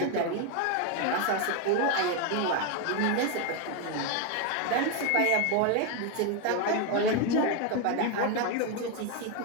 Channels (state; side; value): different; both; correlation 0.02